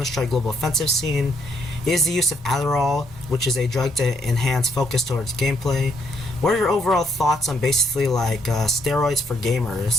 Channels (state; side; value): normal; both; correlation 0.72